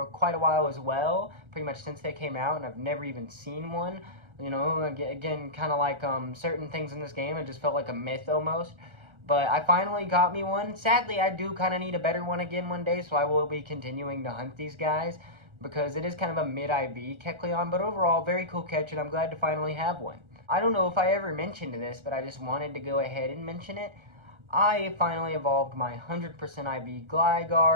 quite a while as well, pretty much since they came out, and I've never even seen one. You know, again, kind of like certain things in this game, it just felt like a myth almost. But I finally got me one. Sadly, I do kind of need a better one again one day, so I will be continuing to hunt these guys, because it is kind of a mid-IV Kecleon, but overall, very cool catch, and I'm glad to finally have one. I don't know if I ever mentioned this, but I just wanted to go ahead and mention it. I finally evolved my 100% IV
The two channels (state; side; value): late; left; 1.3 ms